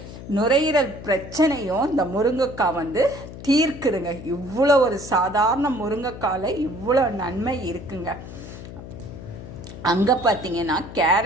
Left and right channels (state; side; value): noise; left; hum, 13 dB below the sound